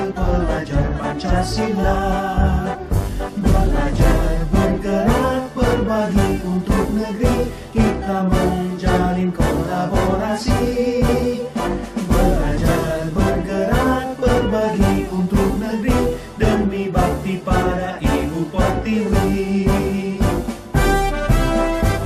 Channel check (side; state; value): both; identical; correlation 1.00